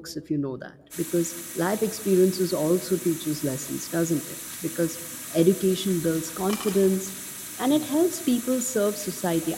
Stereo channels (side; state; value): both; identical; correlation 1.00